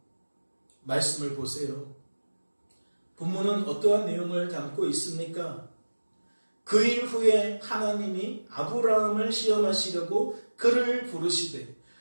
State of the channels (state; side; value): inverted; both; correlation -1.00